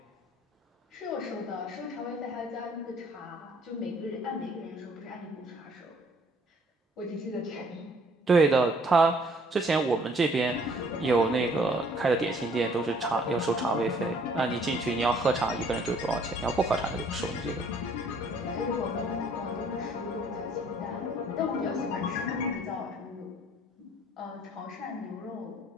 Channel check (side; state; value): both; normal; correlation 0.60